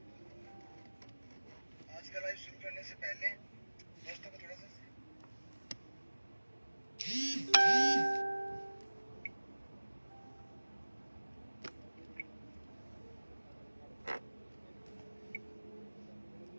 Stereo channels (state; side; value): inverted; both; correlation -1.00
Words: आज का लाइव शुरू करने से पहले दोस्तों को थोड़ा सा